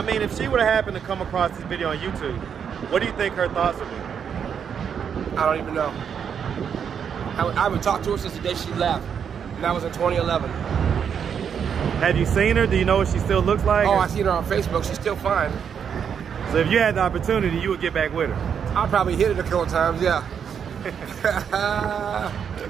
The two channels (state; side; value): quieter; left; 7.5 dB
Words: mean, if she would have happened to come across this video on YouTube, what do you think her thoughts would be? I don't even know. I haven't talked to her since the day she left, and that was in 2011. Have you seen her? Do you know what she still looks like? Oh, I've seen her on Facebook. She's still fine. So if you had the opportunity, you would get back with her? I'll probably hit it a couple times, yeah.